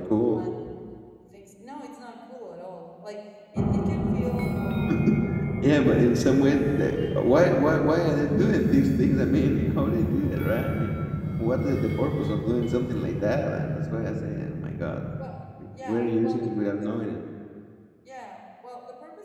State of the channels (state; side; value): identical; both; correlation 1.00